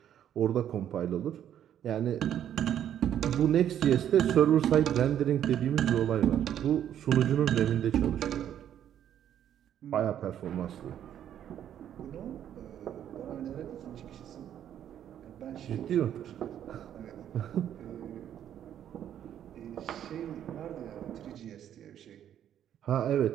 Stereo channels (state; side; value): quieter; left; 10.3 dB